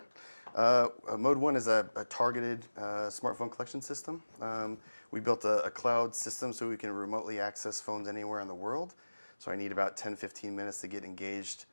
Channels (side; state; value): both; inverted; correlation -1.00